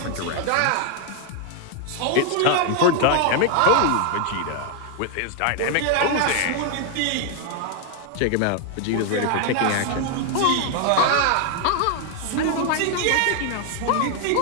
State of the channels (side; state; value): both; different; correlation 0.00